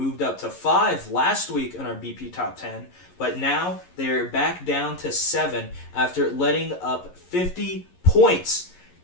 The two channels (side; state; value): right; late; 11 ms